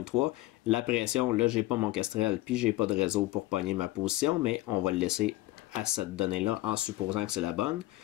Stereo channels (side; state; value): right; quieter; 17.9 dB